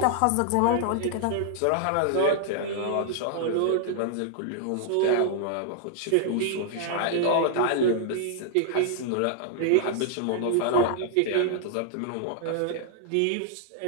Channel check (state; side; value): different; both; correlation -0.01